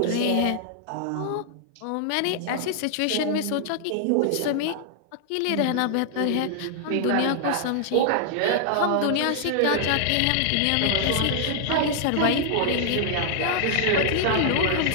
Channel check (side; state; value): both; different; correlation -0.01